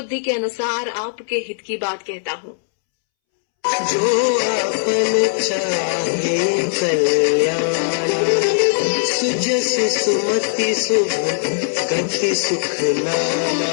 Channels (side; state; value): right; silent; 66 dB below the other